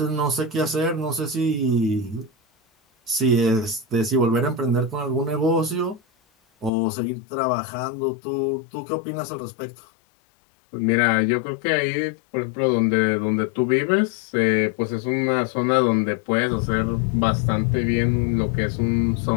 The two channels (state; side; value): drops out; right; at 6.7 s